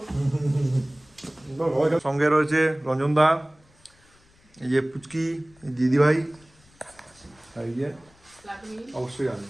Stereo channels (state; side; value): noise; left; rumble, 30 dB below the sound